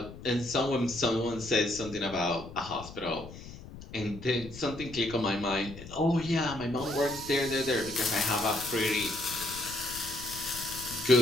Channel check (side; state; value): left; noise; rumble, 14 dB below the sound